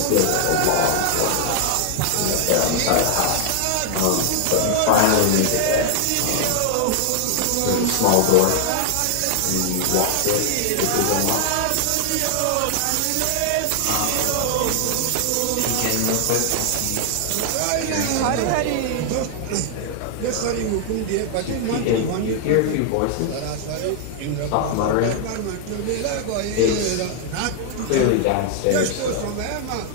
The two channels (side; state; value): both; different; correlation 0.00